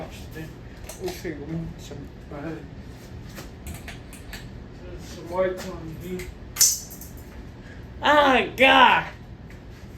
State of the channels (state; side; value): identical; both; correlation 1.00